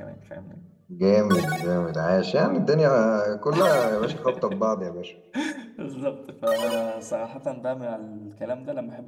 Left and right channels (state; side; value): identical; both; correlation 1.00